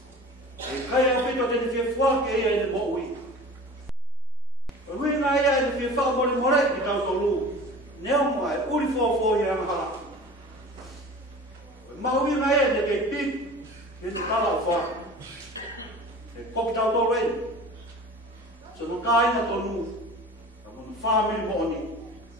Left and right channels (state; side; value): normal; both; correlation 0.40